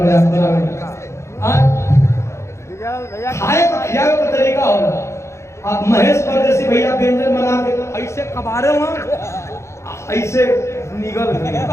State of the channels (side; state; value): right; late; 0.14 ms